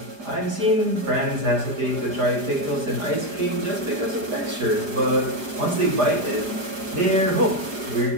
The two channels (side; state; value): left; late; 4.9 ms